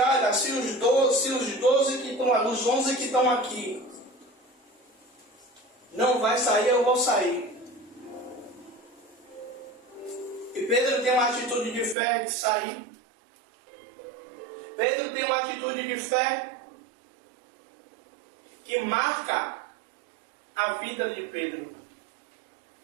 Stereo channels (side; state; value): left; drops out; at 12.0 s